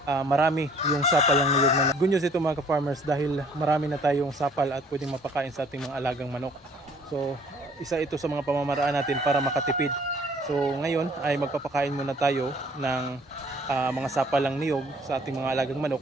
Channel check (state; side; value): normal; both; correlation 0.57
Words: marami yung sapal ng niyog na good news ito mga ka-farmers dahil marami na tayong sapal at pwedeng mapakain sa ating mga alagang manok. So isa ito sa mga pamamaraan natin para makatipid. So ngayon ay magpapakain muna tayo ng mga sapal ng niyog sa ating mga alagang